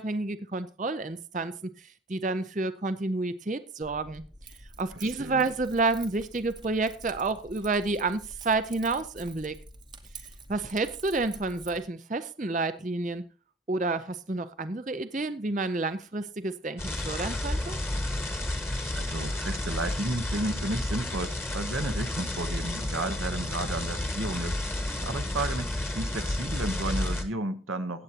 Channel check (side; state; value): both; normal; correlation 0.52